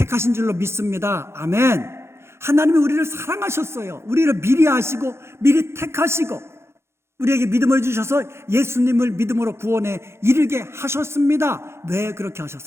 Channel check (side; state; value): left; late; 0.13 ms